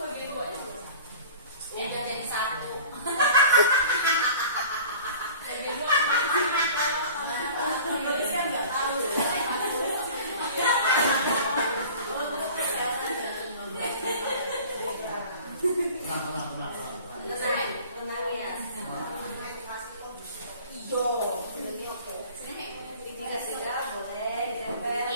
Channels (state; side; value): inverted; both; correlation -0.44